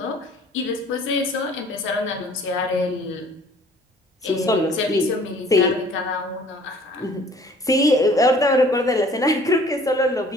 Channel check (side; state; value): both; normal; correlation 0.53